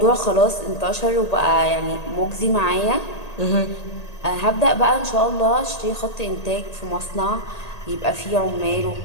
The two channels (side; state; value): right; late; 1.8 ms